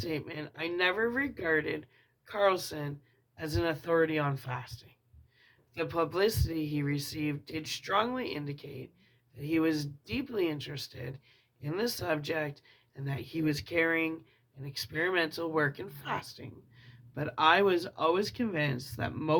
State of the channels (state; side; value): identical; both; correlation 1.00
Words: I never regarded Carlson as an authority on fasting. The publicity he received did strongly indicate that he was deeply interested in the subject and that he was carrying an experimental work in fasting. But I was always convinced that